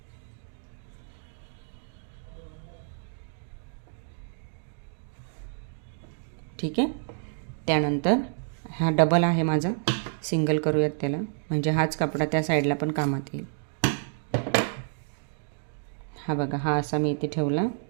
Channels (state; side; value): silent; left; digital silence